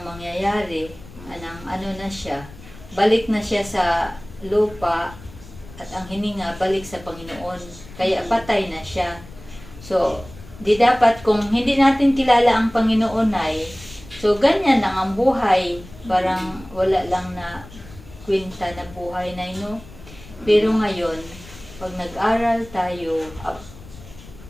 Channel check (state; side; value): noise; left; rumble, 18 dB below the sound